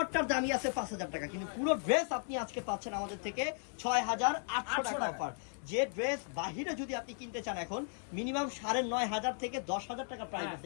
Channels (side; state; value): right; silent; 54 dB below the other